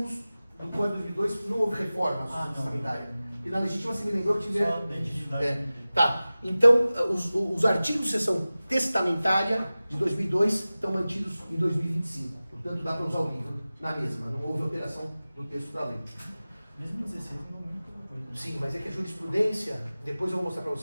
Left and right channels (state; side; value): inverted; both; correlation -0.97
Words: do Código de 2002, não houve reforma testamentária. E na legítima você me lembrou que tiver... Tá, então os artigos de seção testamentária de 2002 estão mantidos em 2025. Portanto, dá para usar o livro na mesma, não houve alteração do texto da lei. Mesmo 16 não muda coisa. Sim, mas é que a jurisprudência, depois eu vou mostrar para